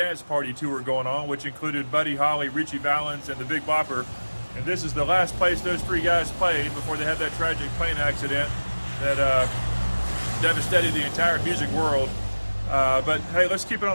party tour going on, which included Buddy Holly, Richie Valens, and the Big Bopper. And this is the last place those three guys played before they had that tragic plane accident that devastated the entire music world. But hey, let's keep it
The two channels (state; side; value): inverted; both; correlation -1.00